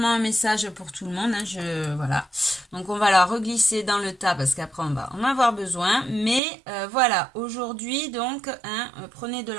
un message pour tout le monde. Hein, voilà. Donc, on va la reglisser dans le tas parce qu'après, on va en avoir besoin. Mais voilà, aujourd'hui, donc, hein, prenez de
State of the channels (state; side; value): drops out; left; at 6.4 s